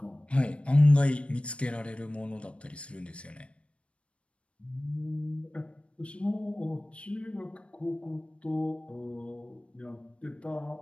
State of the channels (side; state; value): right; late; 0.060 ms